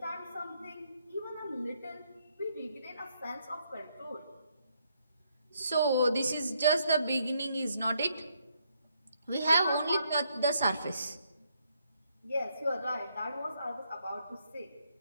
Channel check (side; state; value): both; inverted; correlation -0.74